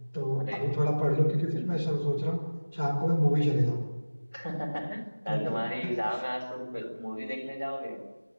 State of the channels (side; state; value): both; inverted; correlation -1.00